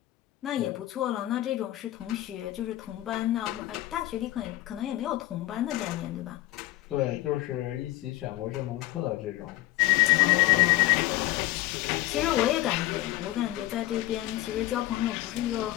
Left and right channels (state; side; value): quieter; right; 16.6 dB